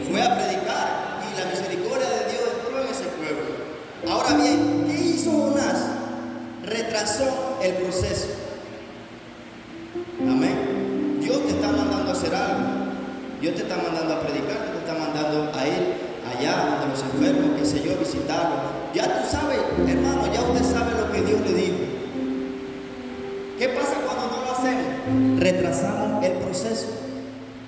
Fue a predicar, y la misericordia de Dios entró en ese pueblo. Ahora bien, ¿qué hizo Jonás? Retrasó el proceso. Amén. Dios te está mandando a hacer algo. Dios te está mandando a predicar, te está mandando a ir allá donde los enfermos, qué sé yo, visitarlos. Ya tú sabes, hermano, ya usted sabe lo que Dios le dijo. ¿Qué pasa cuando no lo hacemos? Retrasamos el proceso.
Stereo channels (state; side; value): identical; both; correlation 1.00